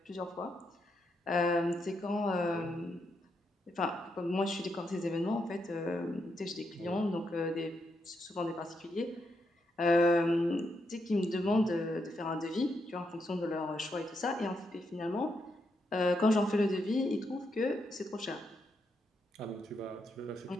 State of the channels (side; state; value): both; normal; correlation 0.81